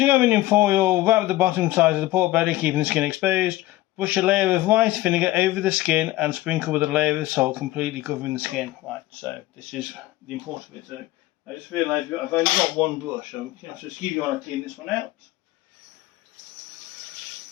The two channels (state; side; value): quieter; right; 17.4 dB